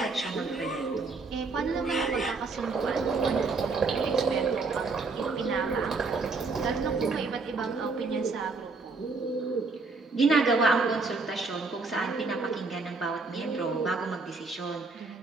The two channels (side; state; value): left; quieter; 4.0 dB